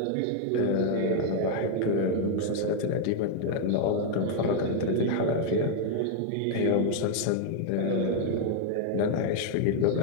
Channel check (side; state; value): both; different; correlation 0.00